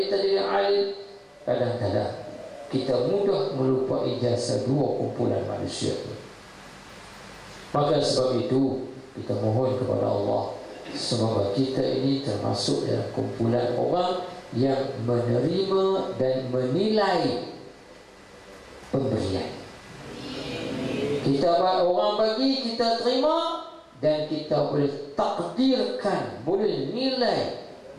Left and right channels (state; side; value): identical; both; correlation 1.00